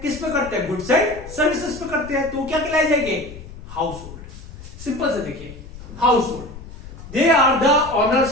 किस पे करते हैं? गुड्स एंड सर्विसेज पे करते हैं। तो क्या कहलाए जाएंगे? House hold. सिंपल से देखिए, household they are the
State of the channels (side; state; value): left; noise; rumble, 15 dB below the sound